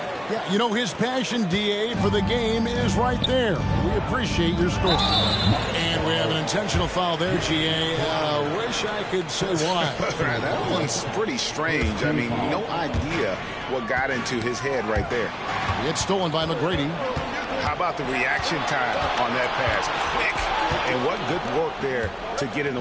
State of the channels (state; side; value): identical; both; correlation 1.00